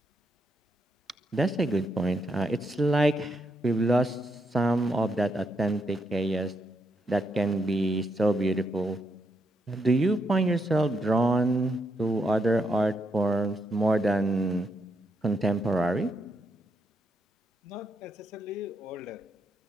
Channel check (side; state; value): both; normal; correlation 0.80